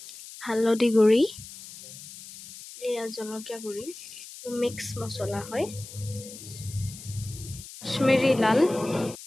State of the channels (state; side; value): noise; left; hiss, 15 dB below the sound